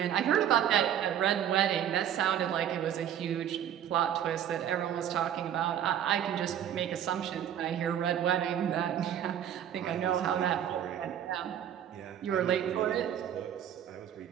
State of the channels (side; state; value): left; quieter; 10.0 dB